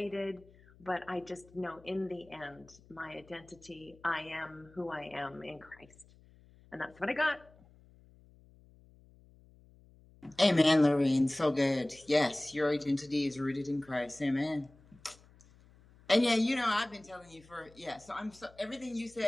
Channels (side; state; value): left; noise; hum, 26 dB below the sound